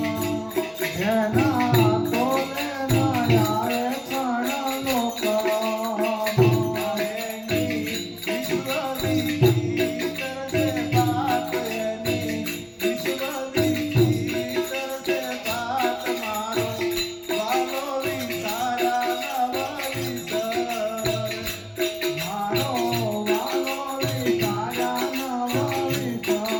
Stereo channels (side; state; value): both; identical; correlation 1.00